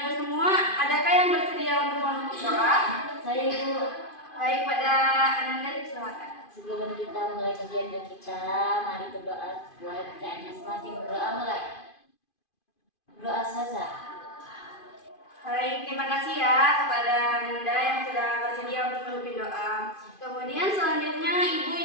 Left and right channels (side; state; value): right; late; 2.5 ms